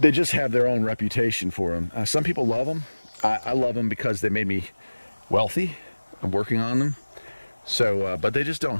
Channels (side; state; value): both; inverted; correlation -1.00